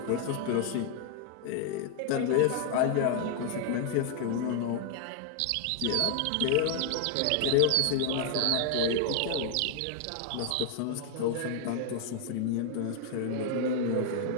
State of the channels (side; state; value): both; different; correlation 0.00